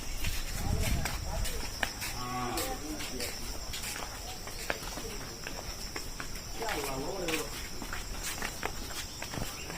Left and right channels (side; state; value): both; identical; correlation 1.00